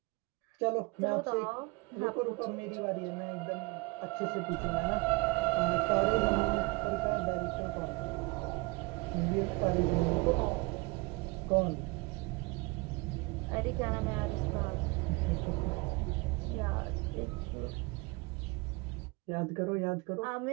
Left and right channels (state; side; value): quieter; left; 26.5 dB